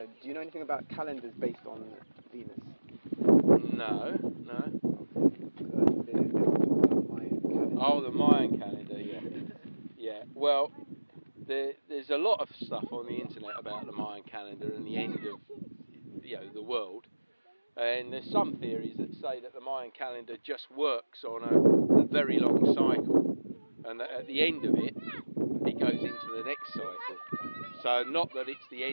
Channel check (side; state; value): both; inverted; correlation -1.00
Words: you know anything about calendars based on Venus? No. There's the Mayan calendar. Oh, the Mayan calendar. Yeah. Well, there's a lot of stuff on the internet about the Mayan calendar and the end of the world. And there's some theories that say that the Mayan calendar just works on a very long cycle, and that at the end of it, it goes into the next cycle. So not that it's the